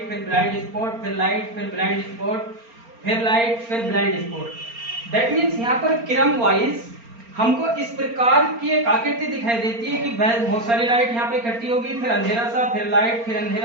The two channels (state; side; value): late; left; 4.3 ms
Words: फिर ब्लाइंड स्पॉट, फिर लाइट, फिर ब्लाइंड स्पॉट, फिर लाइट, फिर ब्लाइंड स्पॉट। दैट मीन्स यहाँ पर क्रम वाइज हमको इस प्रकार की एक आकृति दिखाई देती है कि बहुत सारी लाइट यहाँ पे इकट्ठी होगी, फिर अंधेरा सा, फिर लाइट, फिर